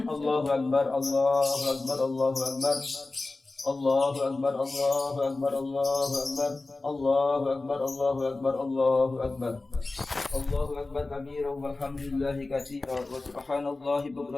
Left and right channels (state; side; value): quieter; right; 3.3 dB